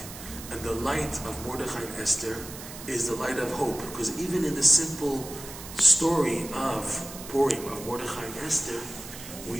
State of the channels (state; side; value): noise; right; hiss, 13 dB below the sound